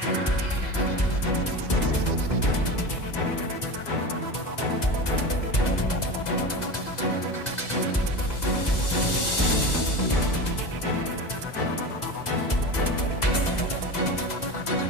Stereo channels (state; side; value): late; right; 2.0 ms